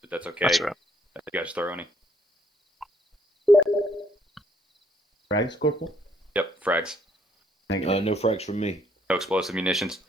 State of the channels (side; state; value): both; normal; correlation 0.67